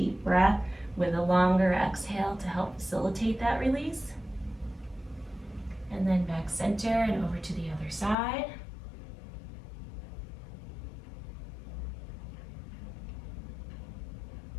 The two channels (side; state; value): right; drops out; at 8.2 s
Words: breath with a longer exhale to help facilitate that release. And then back center and over to the other side.